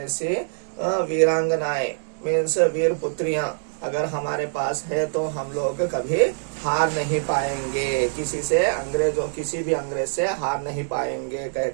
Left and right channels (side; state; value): left; silent; digital silence